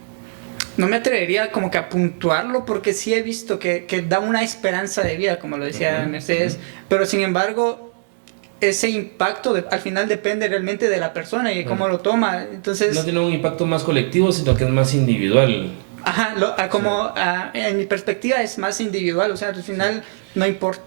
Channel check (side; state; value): left; silent; 62 dB below the other